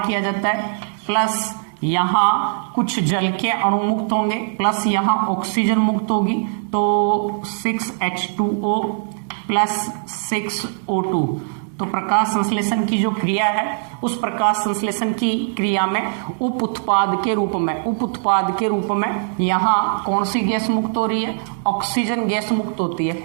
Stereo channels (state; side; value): silent; left; digital silence